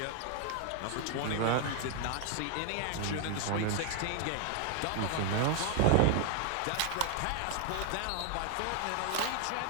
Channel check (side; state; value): both; different; correlation 0.00